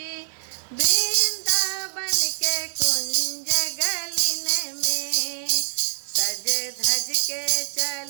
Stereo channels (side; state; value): left; silent; digital silence